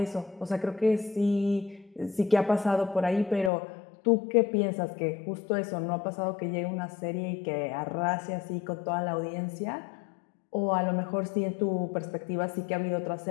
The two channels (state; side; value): drops out; right; at 3.5 s